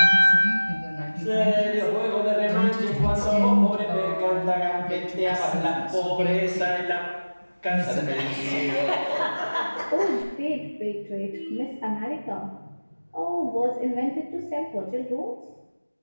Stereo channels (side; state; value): both; inverted; correlation -1.00